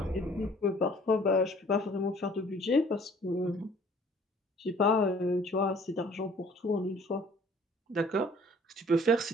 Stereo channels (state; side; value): normal; both; correlation 0.54